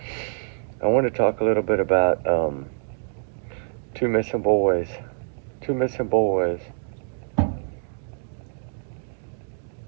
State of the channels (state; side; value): silent; left; 58 dB below the other